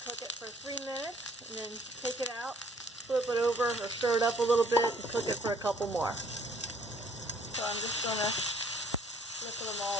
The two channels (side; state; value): both; normal; correlation 0.59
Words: cook it for 3 minutes, and then take it out, flip it over or stir it up a little bit, and cook it for a couple more. So I'm just going to flip them